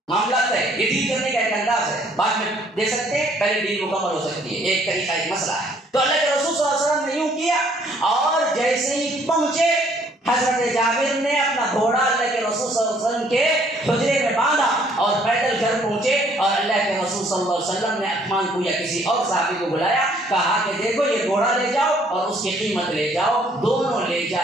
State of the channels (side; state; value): both; normal; correlation 0.63